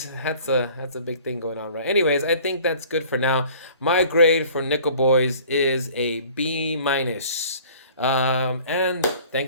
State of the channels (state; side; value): inverted; both; correlation -0.50